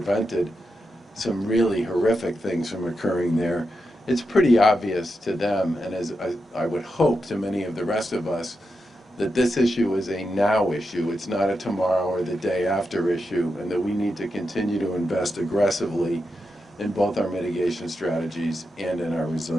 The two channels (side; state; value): both; normal; correlation 0.87